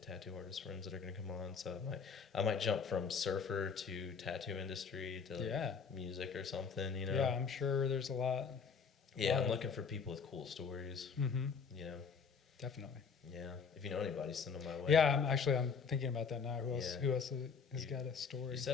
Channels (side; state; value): right; quieter; 5.8 dB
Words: tattoo artist friends that are going to come on. So I might jump from surfer to tattoo industry to like music or something. Yeah, I'm sure there's a lot. Yeah, I'm looking for people with cool stories. Definitely. Yeah. If you know anybody, send them my way. Yeah, I'm thinking about that now. Who else? Yeah. Who else has got a story? You